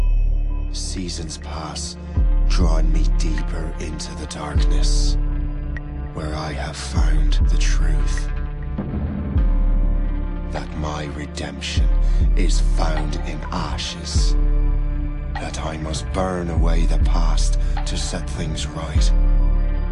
Seasons pass, drawing me deeper into the darkness, where I have found the truth. That my redemption is found in ashes. That I must burn away the past to set things right.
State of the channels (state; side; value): identical; both; correlation 1.00